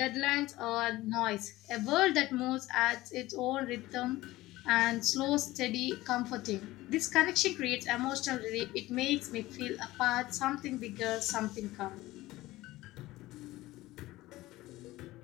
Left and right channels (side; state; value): right; quieter; 17.8 dB